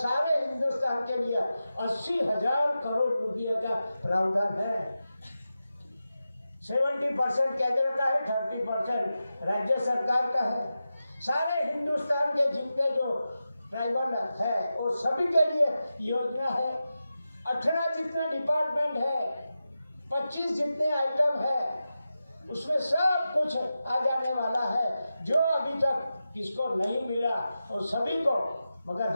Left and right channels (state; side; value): inverted; both; correlation -0.92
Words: हिंदुस्तान के लिए 80,000 करोड़ रुपये का प्रावधान है। 70% केंद्र का है, 30% राज्य सरकार का है। सारे हिंदुस्तान के जितने जो ट्राइबल है वो सभी के लिए योजना है। 18 जितने डिपार्टमेंट है, 25 जितने आइटम है, उसमें सब कुछ आ जाने वाला है, जो अभी तक किसको नहीं मिला और सभी को। मगर